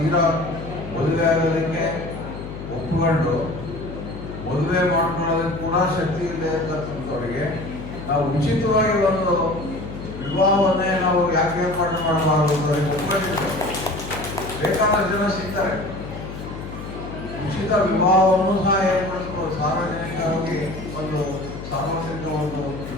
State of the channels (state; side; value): noise; left; hum, 10 dB below the sound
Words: ಮದುವೆ ಆಗೋದಕ್ಕೆ ಒಪ್ಪಿಕೊಂಡು ಮದುವೆ ಮಾಡ್ಕೊಳ್ಳೋದಕ್ಕೆ ಕೂಡ ಶಕ್ತಿ ಇದೆ ಅಂತಕ್ಕಂಥವ್ರಿಗೆ ನಾವು ಉಚಿತವಾಗಿ ಒಂದು ವಿವಾಹವನ್ನೇ ನಾವು ಯಾಕೆ ಏರ್ಪಾಡು ಮಾಡಬಾರದು ಅಂತ ಒಪ್ಪಿಕೊಂಡಿದ್ದೇವೆ. ಬೇಕಾದಷ್ಟು ಜನ ಸಿಗ್ತಾರೆ. ಉಚಿತ ವಿವಾಹವನ್ನು ಸಹ ಏರ್ಪಡಿಸ್ಬೋದು. ಸಾರ್ವಜನಿಕವಾಗಿ ಒಂದು ಸಾರ್ವತ್ರಿಕ ಒಂದು